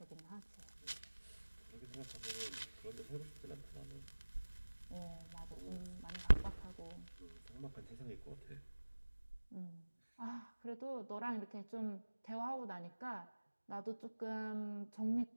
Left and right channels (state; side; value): inverted; both; correlation -1.00